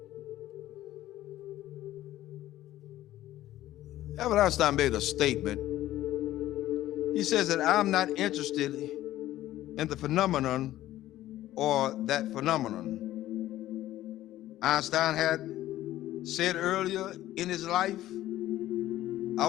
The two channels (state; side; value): quieter; right; 14.4 dB